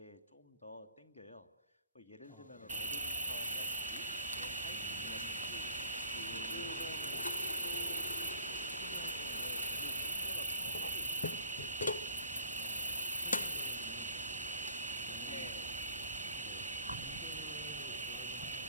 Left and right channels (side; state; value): both; inverted; correlation -0.50